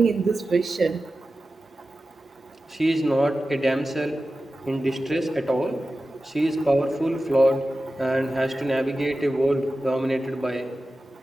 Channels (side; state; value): both; normal; correlation 0.94